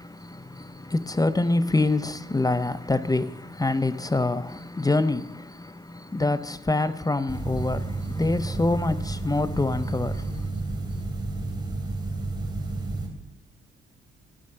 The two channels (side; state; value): both; normal; correlation 0.87